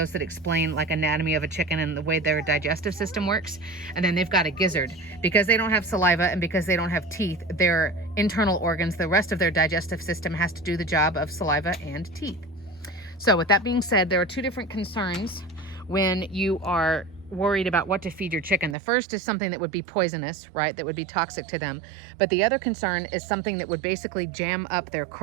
that explain like anatomy of a chicken and the way their digestive system works. And then they've got a gizzard. Because they don't have saliva and because they don't have teeth, their internal organs, the rest of their digestive system has to do the job of saliva and teeth. So with that being said, there are two different concerns when you are worried about what to feed your chicken. The first is something that would be poisonous, right? That would be toxic to them. But the other concern is something that would basically jam up their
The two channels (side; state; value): left; drops out; at 18.8 s